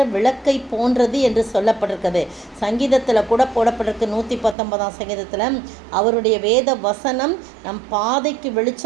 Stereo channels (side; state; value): left; drops out; at 4.5 s